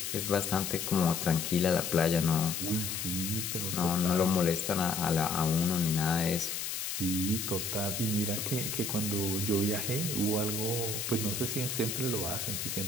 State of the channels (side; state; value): left; noise; hiss, 3 dB below the sound